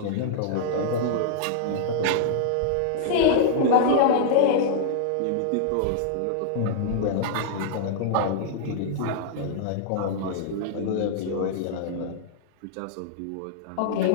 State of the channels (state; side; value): different; both; correlation -0.01